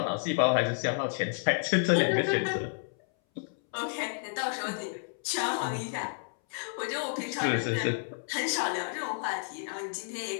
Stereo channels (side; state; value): right; silent; 57 dB below the other